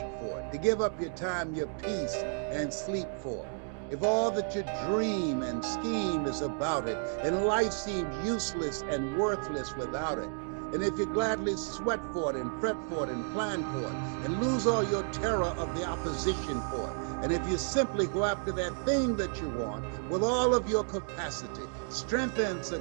for it, to give up your time, your peace, and sleep for it, if all that you dream and scheme is about it, and life seems useless and worthless without it, and if you gladly sweat for it and fret for it and plan for it, and lose all your terror of the opposition for it, and if you simply go after that thing that you want with all of your capacity, strength and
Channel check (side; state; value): left; silent; 56 dB below the other